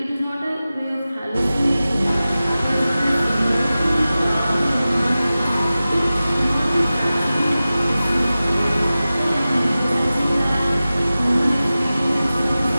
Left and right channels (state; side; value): inverted; both; correlation -0.96